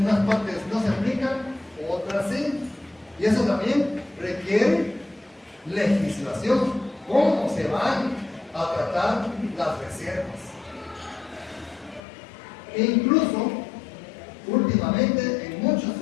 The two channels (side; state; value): right; drops out; at 12.0 s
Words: unas partes no se aplican, otras sí. Y eso también requiere legislación. ¿Cómo se van a tratar las reservas? E incluso, últimamente, en muchos